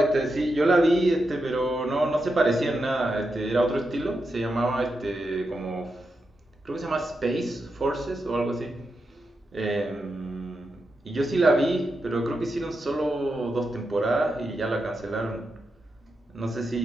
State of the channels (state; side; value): normal; both; correlation 0.87